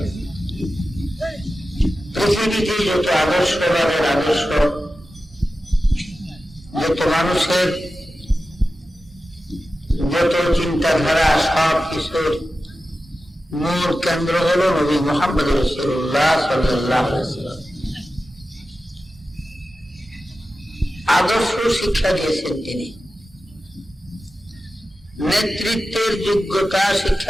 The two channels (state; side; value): normal; both; correlation 0.93